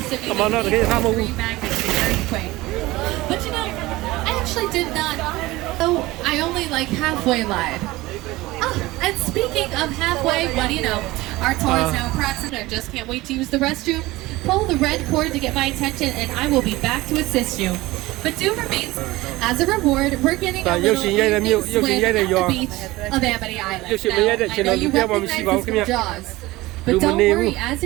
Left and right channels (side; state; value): left; quieter; 19.3 dB